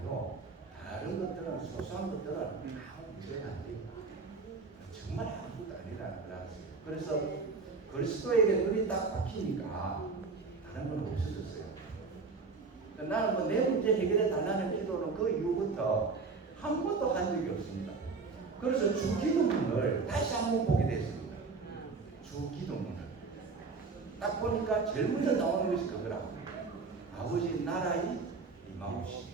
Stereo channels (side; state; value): left; quieter; 4.4 dB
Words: 다른 것들은, 소소한 것들은 아무 문제가 안 돼요. 정말 아무것도 아니라는 걸 알았어요. 그래서 그리스도에게 눈이 딱 박히니까 다른 건 없어졌어요. 나는 뭐 내 문제 해결해 달라는 기도는 그 이후부터 한 번도 한 적이 없습니다. 그래서 주기도문을 다시 한번 보게 됐습니다. 주기도문을 딱 보니까 제일 먼저 나오는 것이 그거라고. 아버지 나라의 임하옵시고